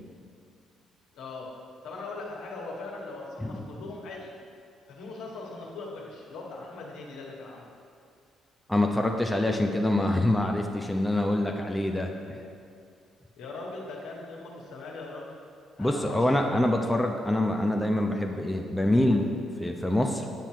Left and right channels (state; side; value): normal; both; correlation 0.90